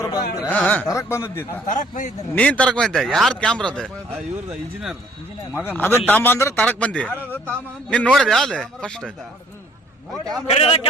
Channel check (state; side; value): normal; both; correlation 0.60